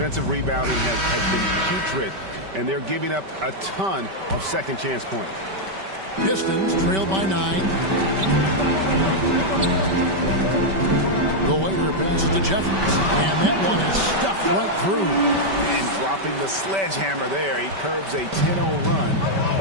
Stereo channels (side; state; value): left; late; 5.2 ms